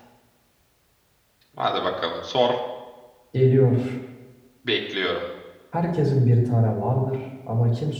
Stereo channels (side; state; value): both; identical; correlation 1.00